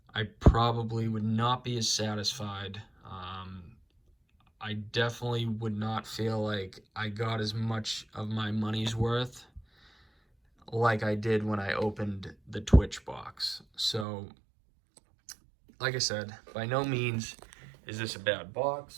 I probably would not be as satisfied. I definitely would not feel like I got as much of my money's worth like I did when I opened the Twitch box. So, like I said, by no means is this a bad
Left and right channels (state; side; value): drops out; left; at 14.1 s